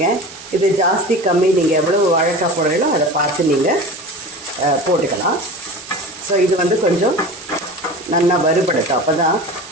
இது ஜாஸ்தி கம்மி, நீங்கள் எவ்வளோ வாழைக்காய் போடுறீங்களோ அதை பார்த்து நீங்கள் போட்டுக்கலாம். ஸோ இது வந்து கொஞ்சம் நல்லா வறுபடுத்தும். அப்போ தான்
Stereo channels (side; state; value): right; noise; hiss, 16 dB below the sound